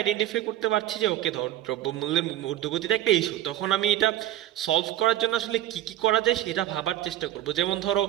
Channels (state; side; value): quieter; left; 13.4 dB